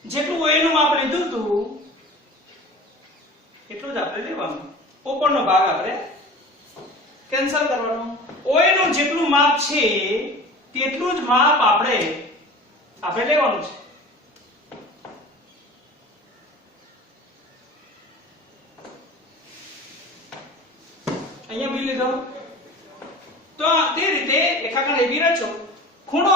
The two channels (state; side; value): normal; both; correlation 0.38